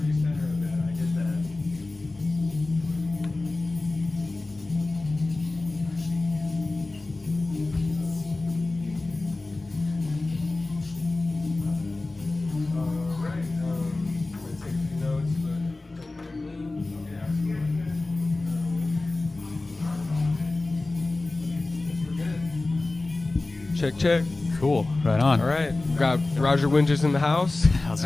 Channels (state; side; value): quieter; right; 3.1 dB